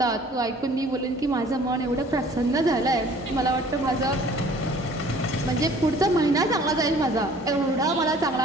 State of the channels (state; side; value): normal; both; correlation 0.52